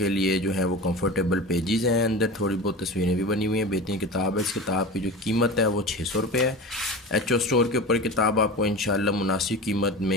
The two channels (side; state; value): both; normal; correlation 0.31